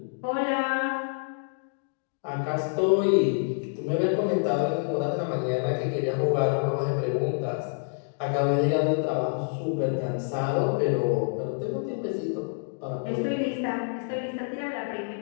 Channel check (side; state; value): right; silent; digital silence